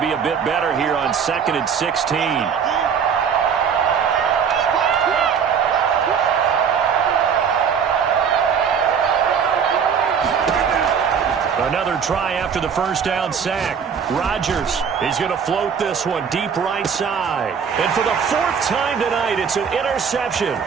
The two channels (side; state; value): left; quieter; 6.9 dB